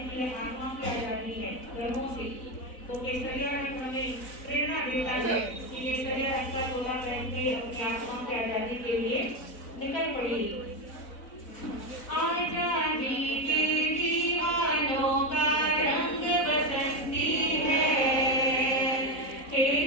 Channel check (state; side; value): late; right; 4.0 ms